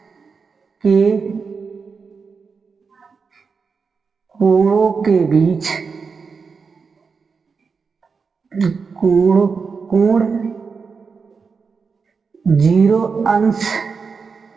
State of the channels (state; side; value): quieter; left; 5.2 dB